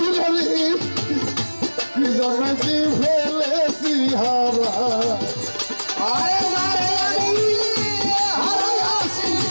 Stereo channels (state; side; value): inverted; both; correlation -1.00